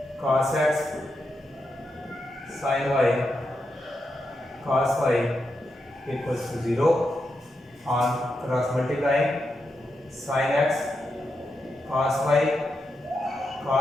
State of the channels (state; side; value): normal; both; correlation 0.86